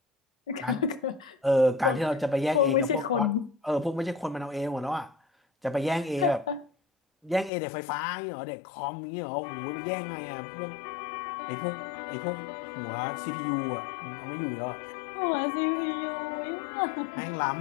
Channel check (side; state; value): right; drops out; at 7.5 s